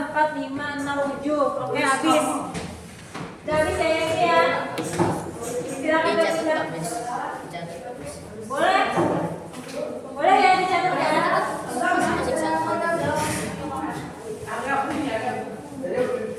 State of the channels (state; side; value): identical; both; correlation 1.00